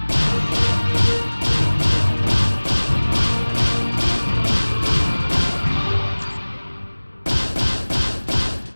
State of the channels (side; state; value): both; inverted; correlation -1.00